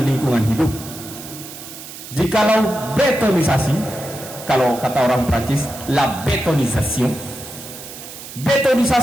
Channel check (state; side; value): noise; right; hiss, 13 dB below the sound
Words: lingkungan hidup. Jikalau betonisasi, kalau kata orang Prancis, la betonisasi